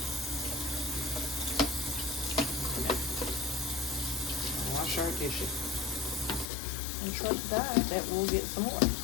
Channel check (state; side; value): drops out; right; at 6.5 s